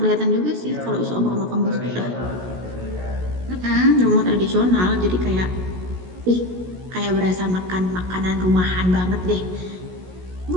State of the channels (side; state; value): left; late; 16 ms